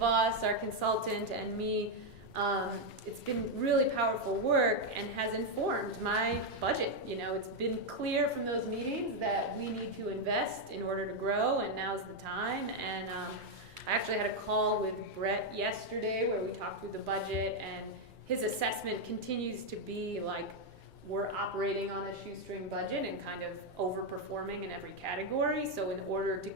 our consultant, and me. It's been really powerful work and has informed my budget. You know, it's been clear from those meetings that we need to invest in order to grow, and now's the time. And I actually had a call with Brett yesterday where we talked through the budget, and his assessment continues to be like we're operating on a shoestring budget and kind of overperforming in every category. So in order to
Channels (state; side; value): late; left; 2.3 ms